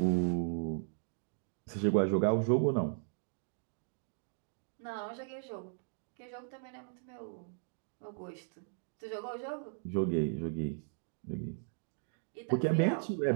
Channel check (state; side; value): silent; left; digital silence